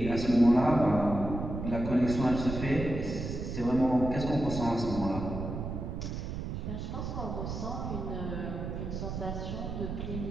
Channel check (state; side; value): noise; right; rumble, 5 dB below the sound